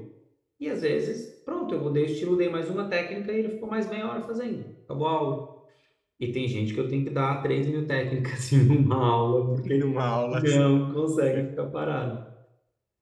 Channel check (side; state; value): both; identical; correlation 1.00